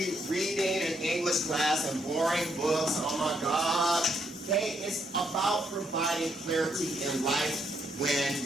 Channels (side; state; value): both; normal; correlation 0.74